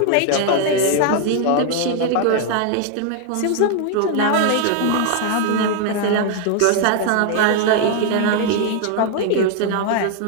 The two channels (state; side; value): different; both; correlation 0.00